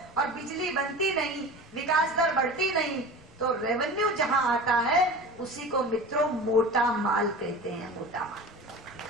बिजली बनती नहीं, विकास दर बढ़ती नहीं, तो रेवेन्यू जहां आता है उसी को मित्रों मोटा माल कहते हैं, मोटा माल।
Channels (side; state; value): both; normal; correlation 0.34